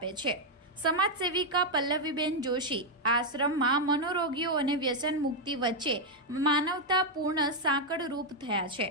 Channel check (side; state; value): both; normal; correlation 0.00